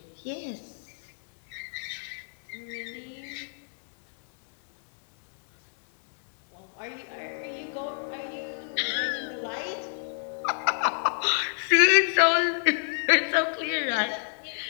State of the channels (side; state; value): right; silent; digital silence